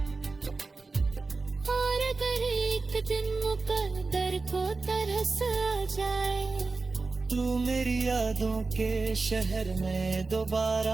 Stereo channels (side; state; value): left; quieter; 3.9 dB